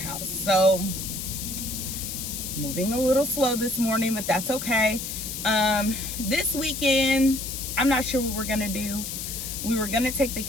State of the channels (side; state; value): left; noise; hiss, 6 dB below the sound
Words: So, moving a little slow this morning, but that's okay. This weekend, I'm not sure what we're gonna do. We were gonna take the